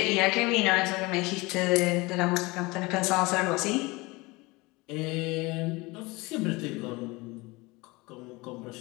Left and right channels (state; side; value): quieter; right; 23.7 dB